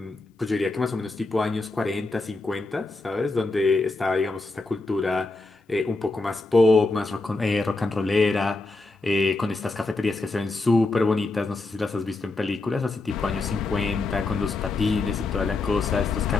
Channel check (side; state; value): right; quieter; 3.3 dB